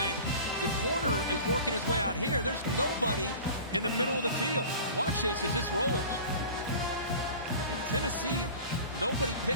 The corner is working his way out here. There's nobody in the middle of the field. Watch this as this rolls. I mean, Tennessee, nobody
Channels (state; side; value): inverted; both; correlation -0.39